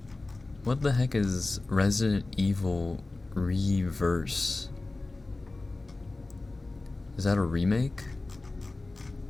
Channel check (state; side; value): quieter; right; 3.2 dB